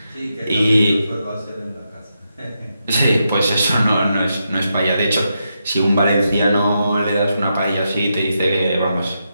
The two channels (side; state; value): both; inverted; correlation -0.84